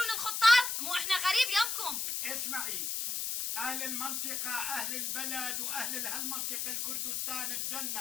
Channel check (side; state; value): left; noise; hiss, 1 dB below the sound